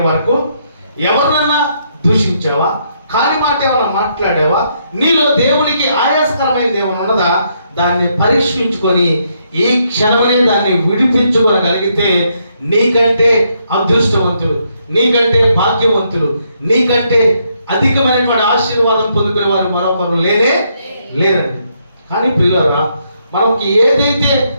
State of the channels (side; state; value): both; inverted; correlation -0.75